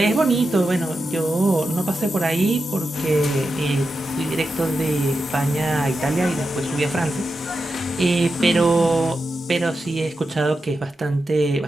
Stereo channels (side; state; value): both; normal; correlation 0.89